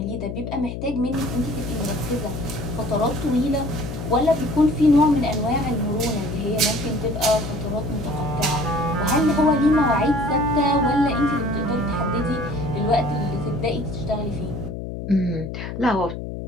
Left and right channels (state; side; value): noise; left; hum, 7 dB below the sound